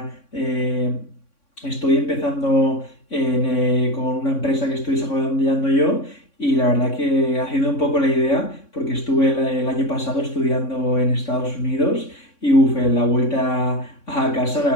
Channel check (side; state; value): right; late; 3.6 ms